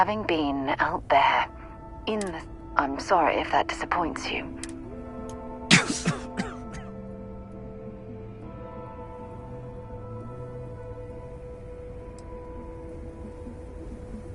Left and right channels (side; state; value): both; identical; correlation 1.00